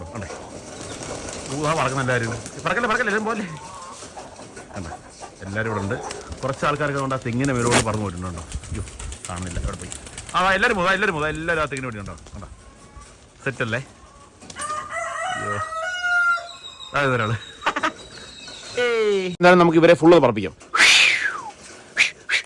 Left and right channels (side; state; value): both; identical; correlation 1.00